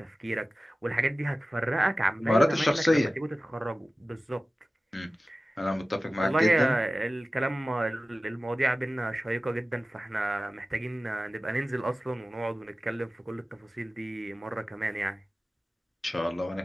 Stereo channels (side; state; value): both; normal; correlation 0.96